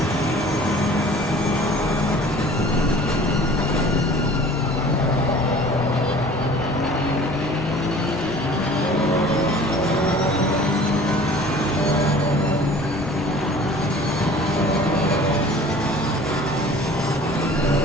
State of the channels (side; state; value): both; normal; correlation 0.47